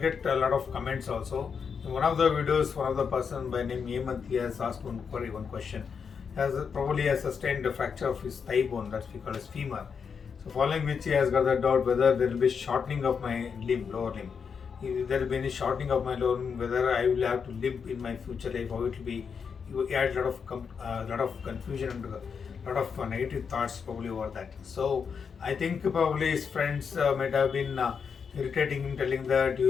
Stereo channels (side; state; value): right; quieter; 6.3 dB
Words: a lot of comments also. In one of the videos, one of the person by name Hemant has asked one question. Probably has sustained a fracture of his thigh bone, that we call as femur. So following which he has got the doubt whether there will be shortening of my lower limb. If there will be any shortening of my lower limb, whether I will have to limp in my future life, how it will be. He had a lot of confusion and a lot of negative thoughts probably over that. So I think probably his friends might have been irritating him, telling that you